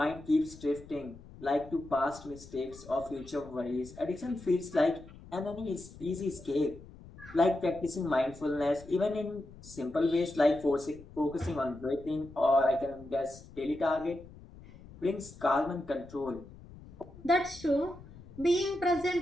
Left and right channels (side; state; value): left; noise; rumble, 18 dB below the sound